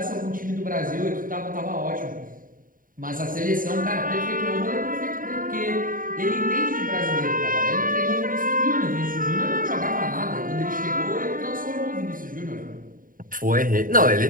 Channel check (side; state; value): left; late; 0.40 ms